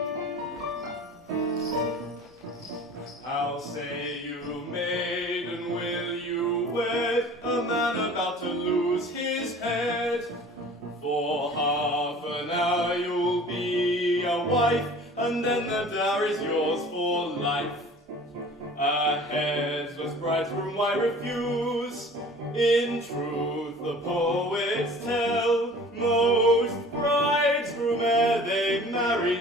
How say you, maiden, will you wed a man about to lose his head? For half an hour you'll be a wife, and then the dower is yours for life. A headless bridegroom why refuse? In truth the poets tell, most bridegroom ere they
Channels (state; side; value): normal; both; correlation 0.45